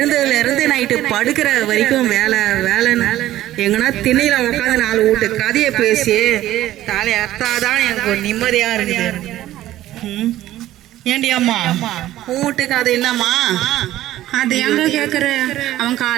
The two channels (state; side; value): quieter; left; 14.3 dB